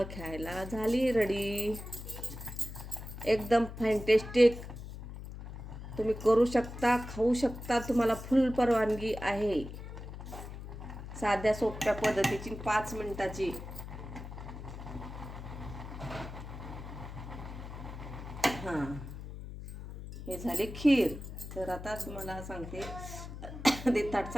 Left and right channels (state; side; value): noise; left; hum, 10 dB below the sound